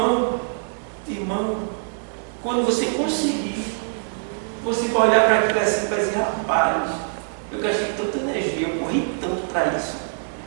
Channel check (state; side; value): silent; left; digital silence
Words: Irmão, quando você conseguir, você vai olhar para aquilo assim e vai dizer: rapaz, eu gastei tanta energia, eu corri tanto para isso.